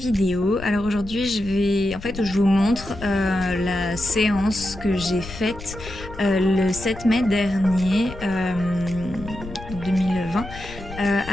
Alors aujourd'hui je vous montre la séance que j'ai faite le 7 mai dernier, donc 2020,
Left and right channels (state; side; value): noise; left; rumble, 13 dB below the sound